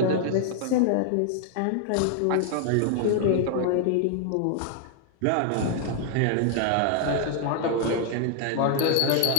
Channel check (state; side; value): different; both; correlation 0.00